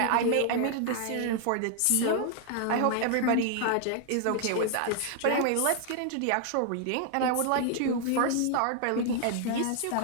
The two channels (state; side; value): different; both; correlation 0.00